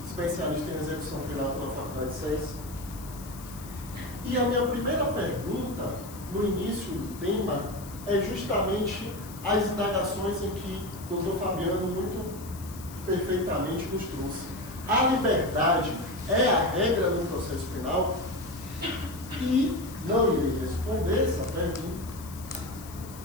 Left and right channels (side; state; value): left; noise; hiss, 17 dB below the sound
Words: especialista em execução penal pela Faculdade de Ciências. E a minha primeira pergunta, no início do tema, é justamente as indagações em que o Dr. Fabiano muito perfeitamente nos trouxe. A liberdade é a regra no processo penal? E não irei responder essa pergunta,